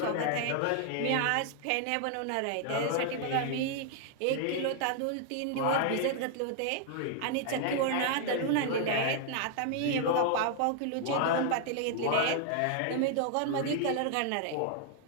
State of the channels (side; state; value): both; different; correlation 0.00